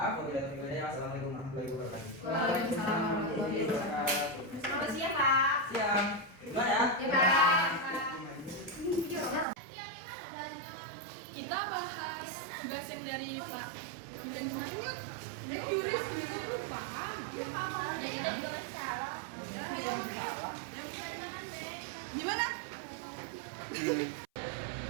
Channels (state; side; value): drops out; left; at 9.5 s